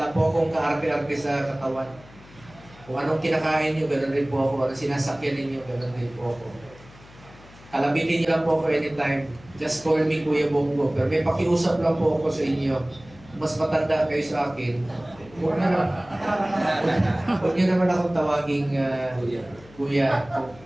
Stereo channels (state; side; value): noise; left; hum, 22 dB below the sound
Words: po akong kaarte-arte sa katawan. Kung anong kinakain niyo, ganoon rin po ako. Anong sinasakyan ninyo, ganoon rin po ako. Kalabitin niyo lang po ako anytime. Just call me Kuya Bongo. Pero may pakiusap lang po ako sa inyo. Mas matanda kayo sa akin. Huwag niyo naman akong tawaging Kuya.